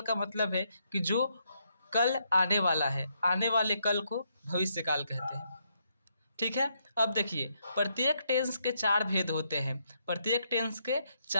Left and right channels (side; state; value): both; inverted; correlation -0.76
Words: का मतलब है कि जो कल आने वाला है। आने वाले कल को भविष्य काल कहते हैं। ठीक है। अब देखिए, प्रत्येक टेंस के 4 भेद होते हैं। प्रत्येक टेंस के